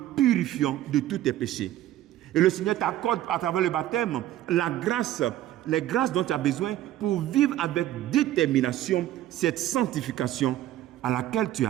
purifiant de tous tes péchés. Et le Seigneur t'accorde à travers le baptême la grâce, les grâces dont tu as besoin pour vivre avec détermination cette sanctification à laquelle tu es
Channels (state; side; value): quieter; left; 13.5 dB